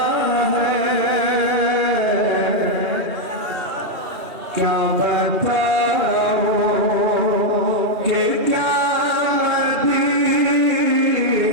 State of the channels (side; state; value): left; late; 2.7 ms